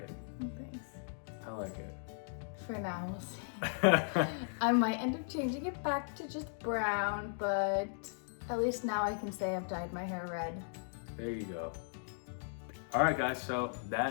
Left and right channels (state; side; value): silent; right; digital silence